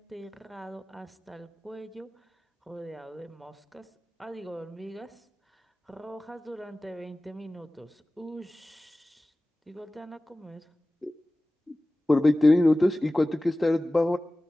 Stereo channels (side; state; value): both; normal; correlation 0.97